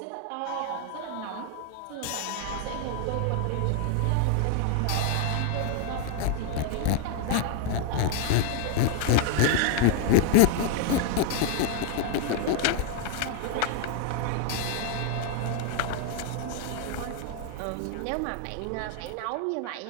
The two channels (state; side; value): different; both; correlation 0.00